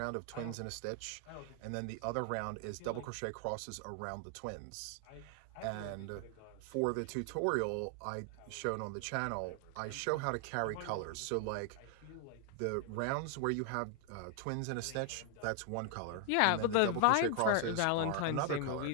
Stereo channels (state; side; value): different; both; correlation 0.00